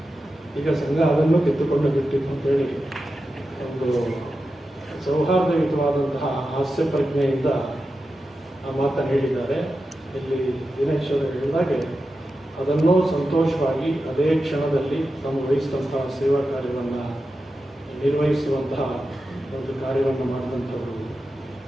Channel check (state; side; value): normal; both; correlation 0.91